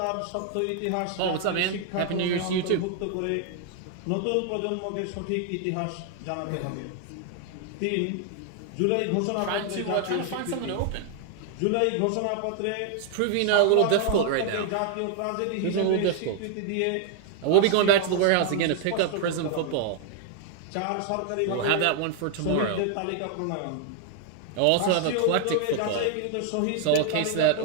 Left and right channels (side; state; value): both; different; correlation 0.00